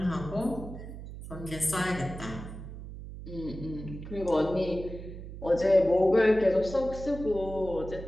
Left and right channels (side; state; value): right; noise; hum, 11 dB below the sound